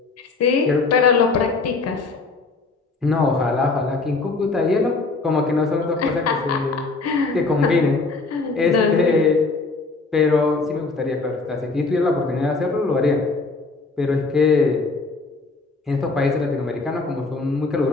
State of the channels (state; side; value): quieter; right; 3.8 dB